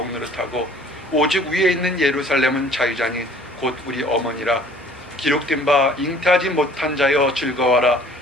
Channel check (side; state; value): both; normal; correlation 0.53